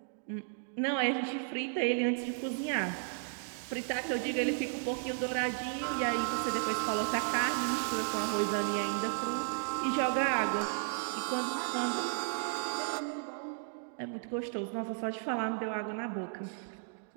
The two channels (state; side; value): silent; left; digital silence